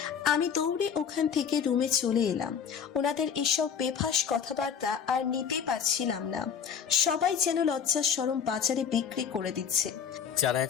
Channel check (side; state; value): right; quieter; 7.4 dB